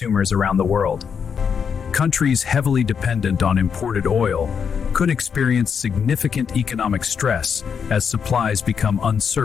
around the world. Countries heavily dependent on imported oil could experience significant economic stress as supplies become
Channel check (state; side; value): quieter; right; 6.8 dB